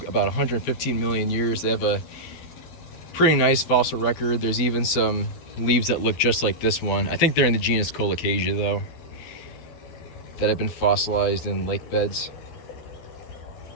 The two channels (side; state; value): right; late; 12 ms